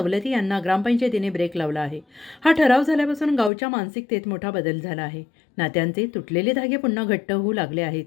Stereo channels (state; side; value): drops out; right; at 3.5 s